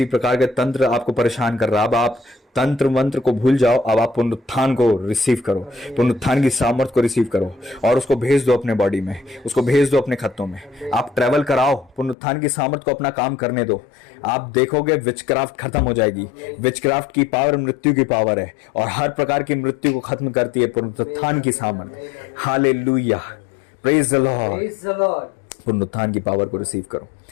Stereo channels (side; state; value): right; drops out; at 12.2 s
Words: प्रकार के तंत्र आपको परेशान कर रहा। अब आप तंत्र मंत्र को भूल जाओ, अब आप पुनरुत्थान को रिसीव करो, पुनरुत्थान की सामर्थ को रिसीव करो और उसको भेज दो अपने बॉडी में, उसको भेज दो अपने खत्तों में। आप ट्रेवल कराओ, पुनरुत्थान की सामर्थ को अपना काम करने दो। आप देखोगे विचक्राफ्ट खत्म हो जाएगी। विचक्राफ्ट की पावर मृत्यु की पावर है और हर प्रकार की मृत्यु को खत्म करती है पुनरुत्थान की सामर्थ। Hallelujah, praise the Lord. पुनरुत्थान की पावर को रिसीव करो।